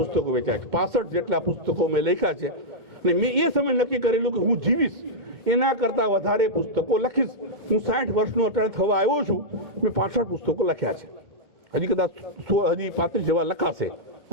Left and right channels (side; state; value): left; late; 2.1 ms